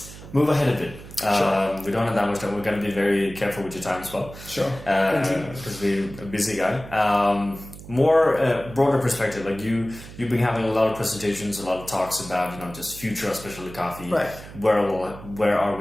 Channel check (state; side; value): noise; right; hum, 15 dB below the sound